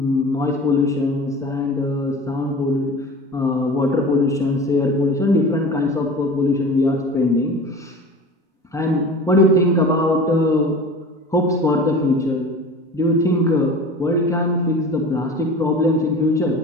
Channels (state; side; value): normal; both; correlation 0.37